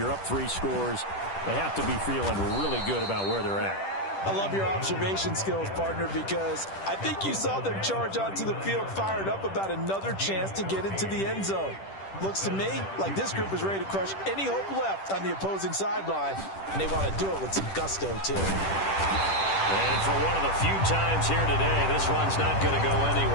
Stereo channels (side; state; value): right; late; 10 ms